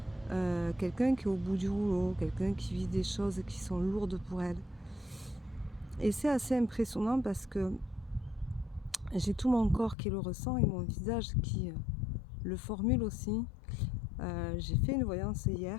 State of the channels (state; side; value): drops out; right; at 10.0 s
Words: quelqu'un qui est au bout du rouleau, quelqu'un qui vit des choses qui sont lourdes pour elle. Et c'est assez impressionnant parce que j'ai tout mon corps qui le ressent et mon visage qui le formule aussi. J'ai fait une voyance